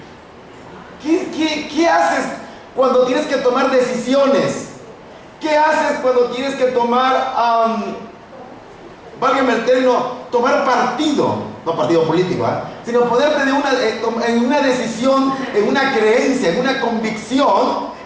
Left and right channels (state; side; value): identical; both; correlation 1.00